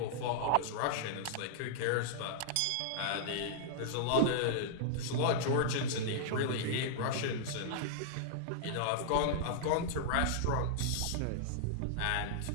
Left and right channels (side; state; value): both; different; correlation -0.02